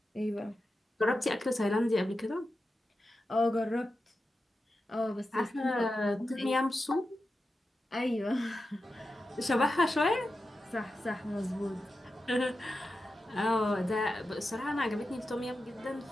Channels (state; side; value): normal; both; correlation 0.91